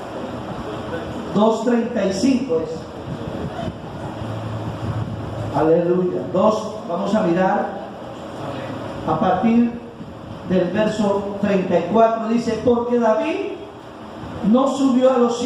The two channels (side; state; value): both; identical; correlation 1.00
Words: 2:35 es. Aleluya. Vamos a mirar a partir del verso 34. Dice: porque David no subió a los